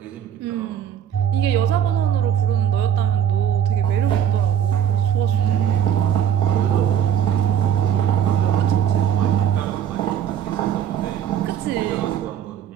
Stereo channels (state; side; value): quieter; left; 9.3 dB